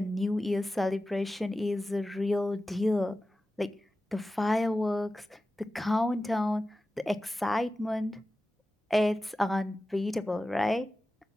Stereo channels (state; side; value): normal; both; correlation 0.95